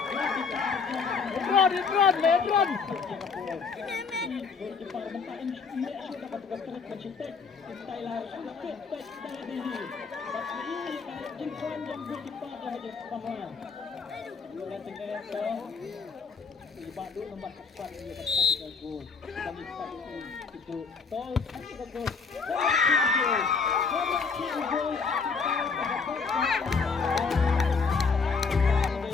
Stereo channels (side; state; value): right; quieter; 5.1 dB